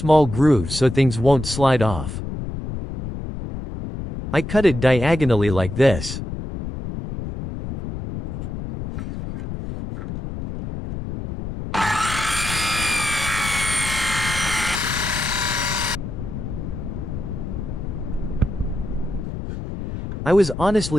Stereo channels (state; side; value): noise; left; rumble, 6 dB below the sound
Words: groove so things won't slide off. I cut it diagonally like this. I was